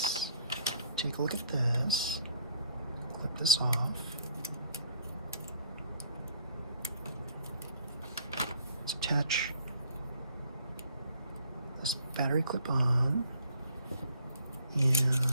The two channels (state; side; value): inverted; both; correlation -0.59